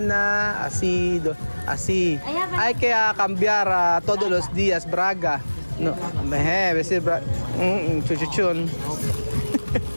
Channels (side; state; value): both; inverted; correlation -1.00